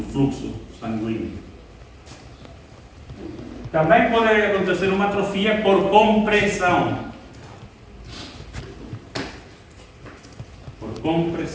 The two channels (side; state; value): both; identical; correlation 1.00